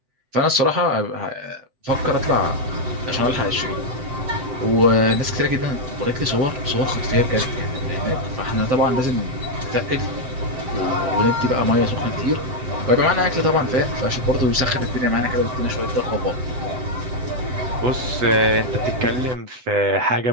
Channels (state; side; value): late; left; 7.9 ms